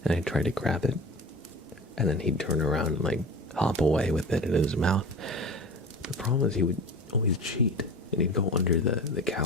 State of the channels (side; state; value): both; normal; correlation 0.34